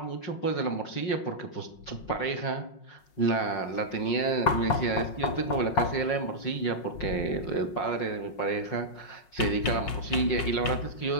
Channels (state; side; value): late; right; 5.5 ms